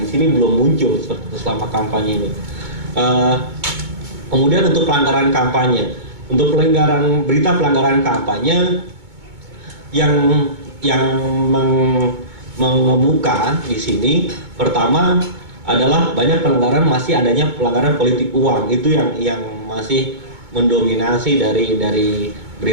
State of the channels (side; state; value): left; late; 2.2 ms